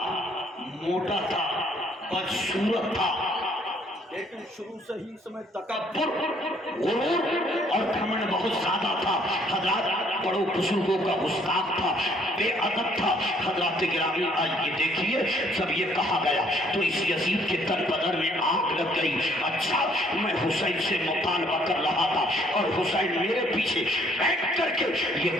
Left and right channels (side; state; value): both; normal; correlation 0.63